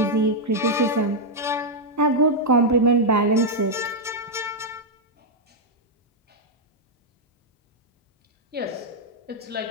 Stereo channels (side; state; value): both; normal; correlation -0.03